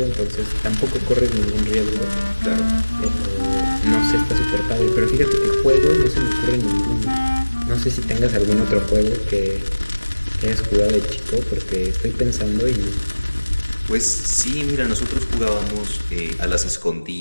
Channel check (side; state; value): both; inverted; correlation -1.00